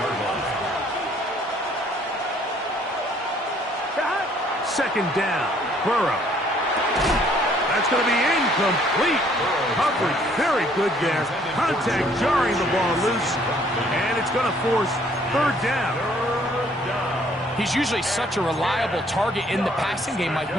line. 2nd down, Burrow. That's going to be incomplete. Coverage very good there. Contact jarring the ball loose. And it's going to force 3rd down. He's usually such a reliable target in the passing game. Like,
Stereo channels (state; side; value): normal; both; correlation 0.62